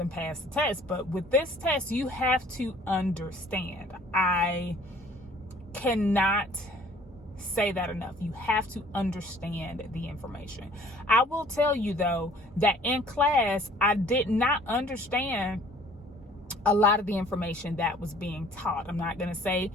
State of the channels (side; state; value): both; normal; correlation 0.55